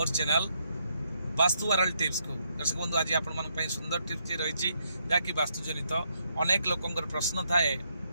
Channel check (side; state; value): both; inverted; correlation -0.76